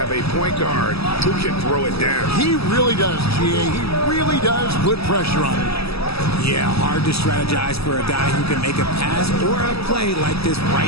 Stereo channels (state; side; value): late; right; 0.78 ms